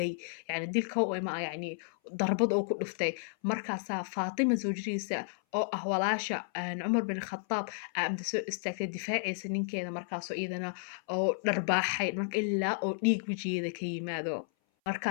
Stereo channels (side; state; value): right; silent; 56 dB below the other